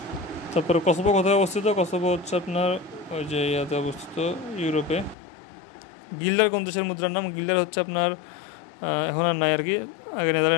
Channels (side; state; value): right; drops out; at 5.2 s